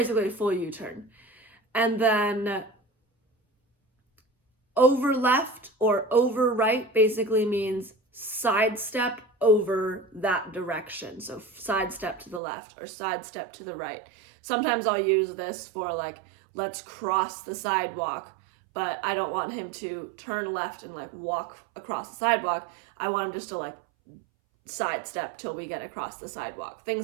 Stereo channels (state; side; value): drops out; left; at 12.4 s